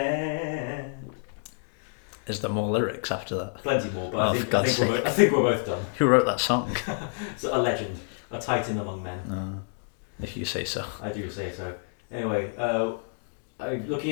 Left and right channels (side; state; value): right; silent; digital silence